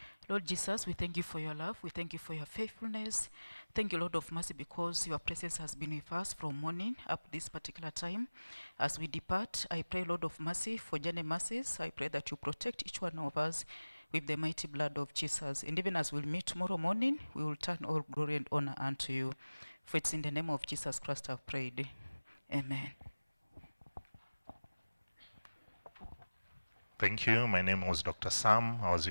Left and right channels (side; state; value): both; inverted; correlation -1.00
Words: Lord Jesus, we thank you for your love. We thank you for your faithfulness. Thank you, Lord of mercy, because your presence has been with us from morning up this particular time. As we depart, I pray, Lord of mercy, for journey mercies. I pray that you protect each one of us with the mighty blood of Jesus. And even as we'll meet tomorrow morning, we will turn all glory and honor unto you. For it's in the name of Jesus Christ I've prayed. Amen. Thank you. My name was Dr. Sam. I was